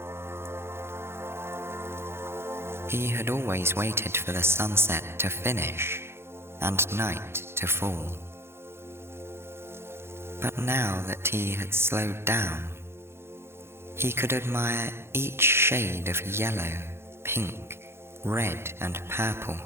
He had always waited for the sunset to finish and night to fall. But now that he had slowed down, he could admire each shade of yellow, pink, red, and purple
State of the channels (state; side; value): late; left; 0.12 ms